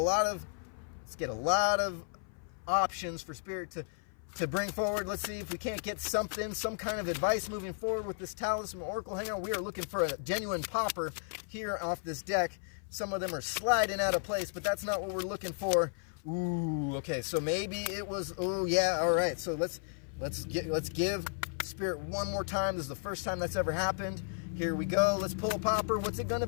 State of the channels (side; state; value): right; silent; 55 dB below the other